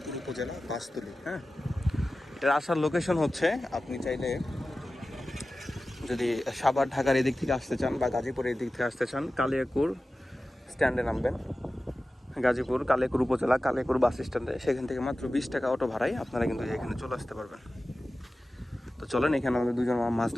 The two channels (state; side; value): normal; both; correlation 0.95